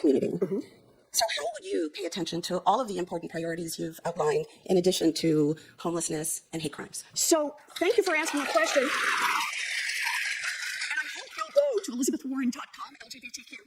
So how would you pay attention to all of the important priorities you've outlined in addition to homelessness and hate crimes? So thank you for asking the question. And I hope you'll go to elizabethwarren.com, LGBTQ,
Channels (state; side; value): identical; both; correlation 1.00